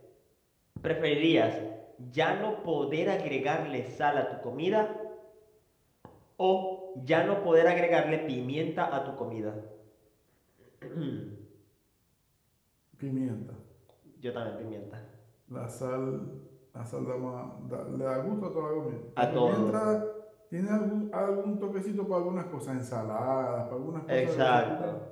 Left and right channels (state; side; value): identical; both; correlation 1.00